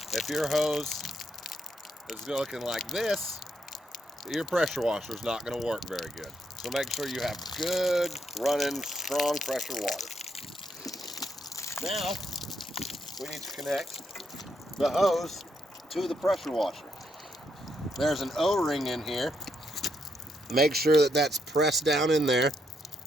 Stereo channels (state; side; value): normal; both; correlation 0.78